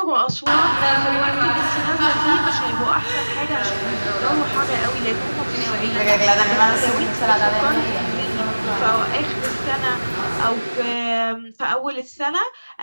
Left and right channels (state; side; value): inverted; both; correlation -1.00